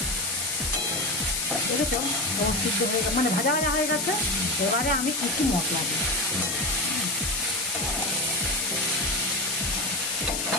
দেখেছো সিদ্ধ হয়ে গেছে, মানে ভাজা হয়ে গেছে। এবারে আমি কিছু মশলা দিই,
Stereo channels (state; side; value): noise; left; hiss, 1 dB below the sound